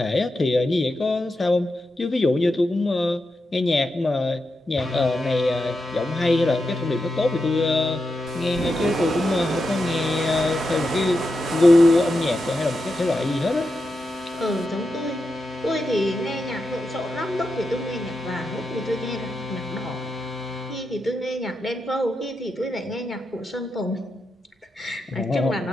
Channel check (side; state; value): both; normal; correlation 0.87